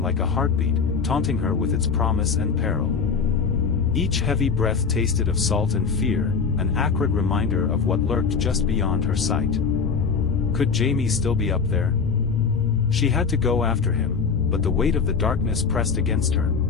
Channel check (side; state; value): right; quieter; 5.5 dB